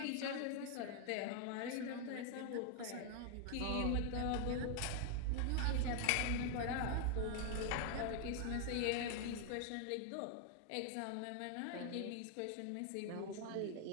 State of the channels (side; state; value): both; different; correlation 0.00